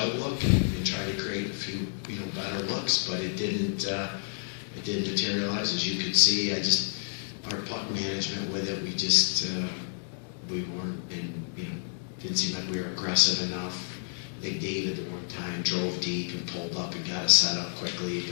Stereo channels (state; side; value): silent; right; digital silence